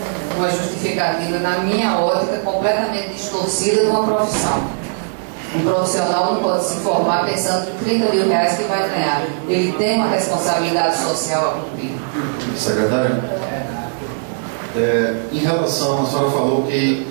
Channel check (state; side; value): silent; left; digital silence